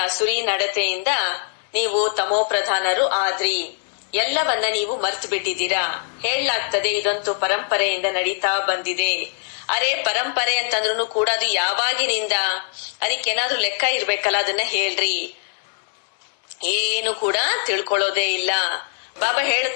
ಸುರಿ ನಡತೆಯಿಂದ ನೀವು ತಮೋ ಪ್ರಧಾನರು ಆದ್ರಿ. ಎಲ್ಲವನ್ನ ನೀವು ಮರ್ತು ಬಿಟ್ಟಿದ್ದೀರಾ. ಹೇಳಲಾಗ್ತದೆ, ಇದಂತೂ ಪರಂಪರೆಯಿಂದ ನಡೀತಾ ಬಂದಿದೆ. ಅರೆ, ಪರಂಪರೆ ಅಂತಂದ್ರೂ ಕೂಡ ಅದು ಯಾವಾಗಿನಿಂದ? ಅದಕ್ಕೇನಾದ್ರೂ ಲೆಕ್ಕ ಇರ್ಬೇಕಲ್ಲ, ಅದನ್ನ ಹೇಳ್ರಿ. ಏನು ಕೂಡ ತಿಳ್ಕೊಳ್ಳೋದೇ ಇಲ್ಲ. ಬಾಬಾ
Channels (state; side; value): silent; right; 59 dB below the other